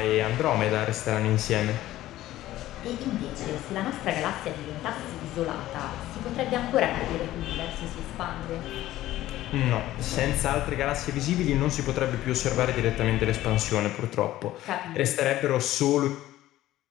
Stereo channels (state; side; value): quieter; right; 14.9 dB